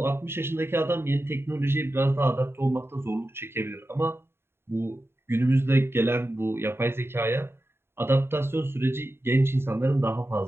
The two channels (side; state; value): left; late; 0.11 ms